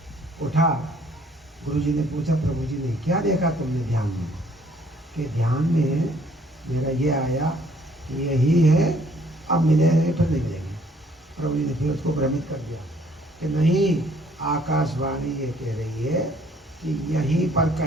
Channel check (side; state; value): both; normal; correlation 0.62